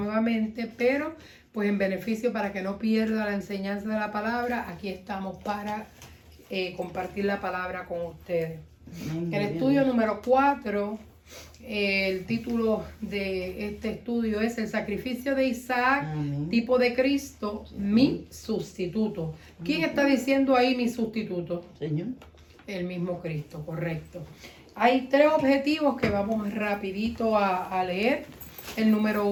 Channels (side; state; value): both; identical; correlation 1.00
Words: pero pues en beneficio para que no pierda la enseñanza de la palabra, aquí estamos para compartir la palabra con ustedes. El estudio número 4, el título de este estudio es El sacrificio de Isaac, tipo de Cristo, mi sustituto. ¿Quién está diciendo ahí mi sustituto? Señor. El mismo Cristo, correcto. Hay 3 objetivos que vamos rapidito a leer. El número